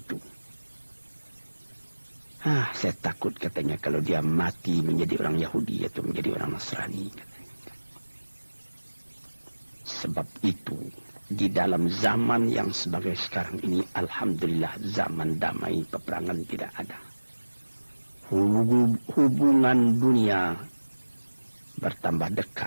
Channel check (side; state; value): both; inverted; correlation -1.00